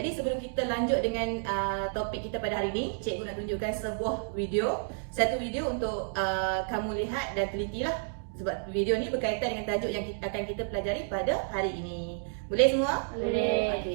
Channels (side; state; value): left; silent; digital silence